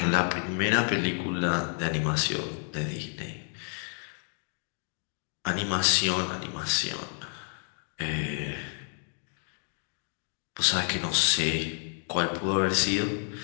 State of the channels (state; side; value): silent; right; 56 dB below the other